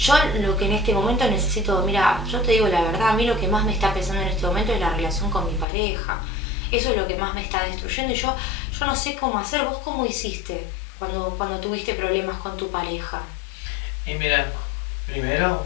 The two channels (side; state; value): right; drops out; at 5.7 s